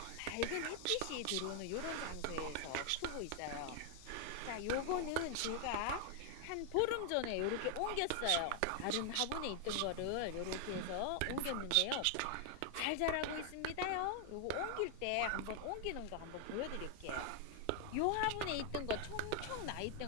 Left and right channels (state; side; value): different; both; correlation 0.00